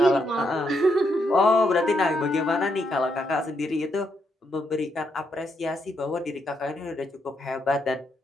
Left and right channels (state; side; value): normal; both; correlation 0.78